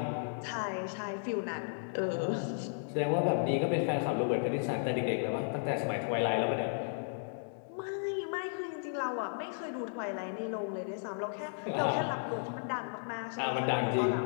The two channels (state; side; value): silent; right; digital silence